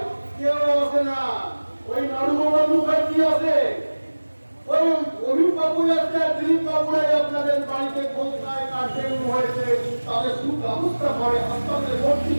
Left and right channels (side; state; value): both; inverted; correlation -1.00